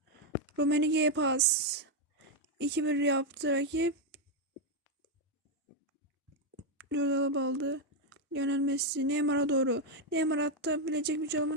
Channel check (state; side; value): normal; both; correlation 0.02